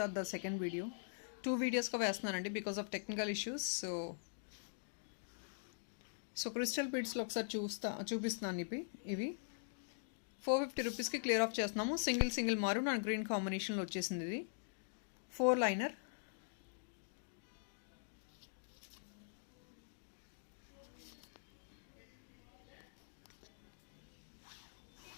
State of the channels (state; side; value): silent; right; digital silence